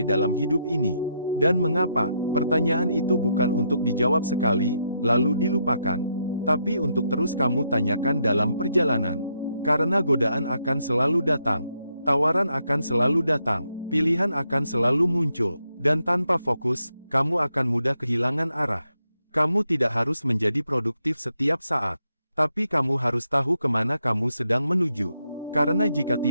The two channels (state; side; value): inverted; both; correlation -0.79